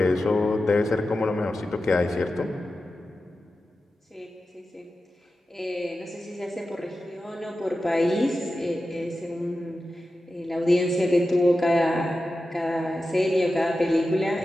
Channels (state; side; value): normal; both; correlation 0.92